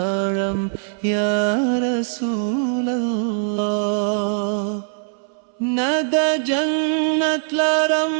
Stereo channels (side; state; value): left; silent; 62 dB below the other